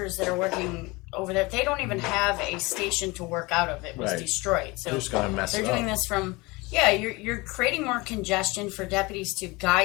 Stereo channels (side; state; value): right; quieter; 24.0 dB